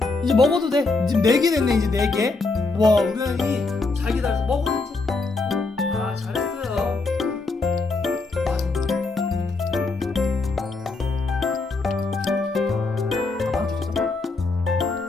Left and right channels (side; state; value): right; quieter; 3.6 dB